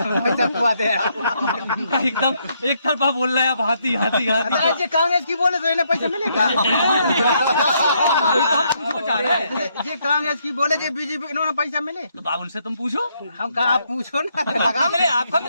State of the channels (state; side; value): inverted; both; correlation -0.74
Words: एकदम एक तरफा बोल रहा है आप, हाथी हाथी हाथी। ये कांग्रेस की बोले तो इन्हें पैसा मिलेगा, ये कांग्रेस की बोले जो बीजेपी इन्होंने पैसा मिले, तो बाबुल से तुम पूछो, हम कहा आप पूछो ना, आपका